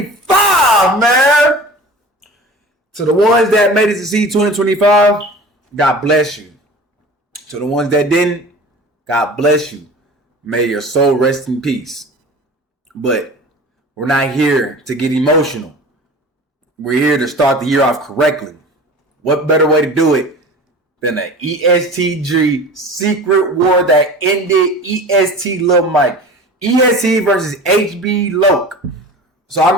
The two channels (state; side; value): normal; both; correlation 0.38